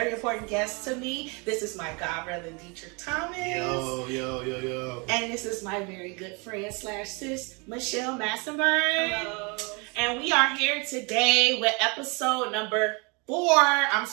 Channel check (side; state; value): left; quieter; 30.5 dB